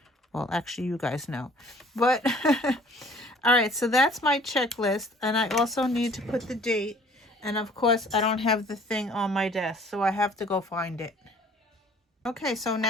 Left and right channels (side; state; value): both; normal; correlation 0.54